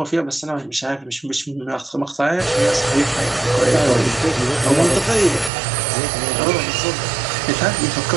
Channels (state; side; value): drops out; left; at 5.5 s